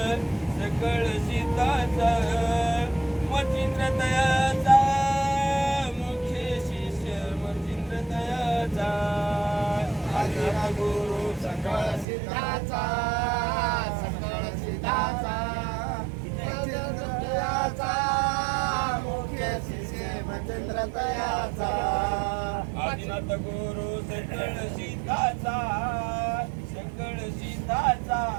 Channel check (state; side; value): drops out; left; at 12.1 s